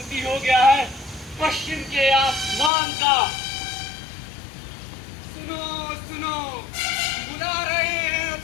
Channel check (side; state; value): right; drops out; at 2.7 s